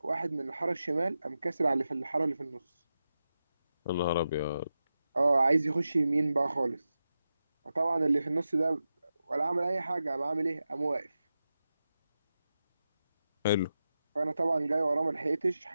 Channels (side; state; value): both; inverted; correlation -0.91